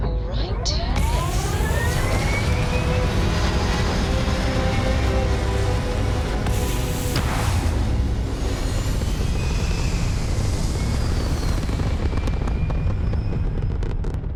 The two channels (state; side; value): identical; both; correlation 1.00